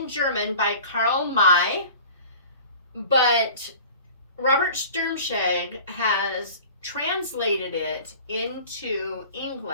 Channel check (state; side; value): inverted; both; correlation -0.43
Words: German by Karl May, but Robert Sturmscheg has translated it into